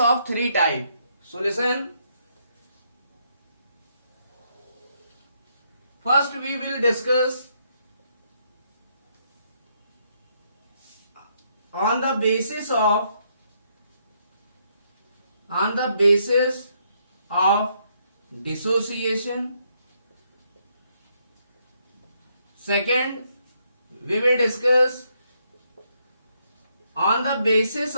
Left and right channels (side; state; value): both; inverted; correlation -0.74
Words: three types. So listen, first we will discuss on the basis of dissociation. Second, we will discuss on the basis